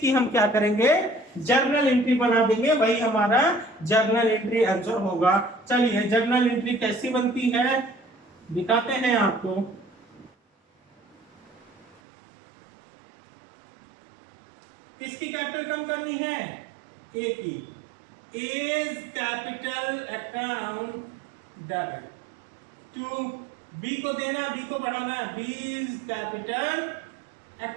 हम क्या करेंगे? जर्नल एंट्री बना देंगे, वही हमारा जर्नल एंट्री आंसर होगा। चलिए, जर्नल एंट्री कैसी बनती है दिखाते हैं आपको। किसकी कैपिटल कम करनी है? ए की। A's capital account debit to B को देना, बी को बढ़ाना, B's capital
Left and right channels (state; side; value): drops out; left; at 12.0 s